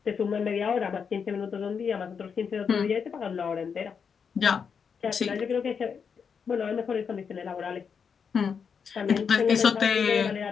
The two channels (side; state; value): right; quieter; 6.4 dB